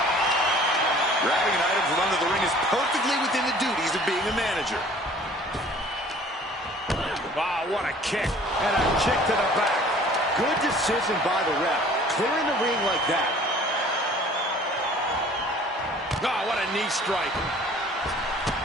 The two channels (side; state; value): both; normal; correlation 0.50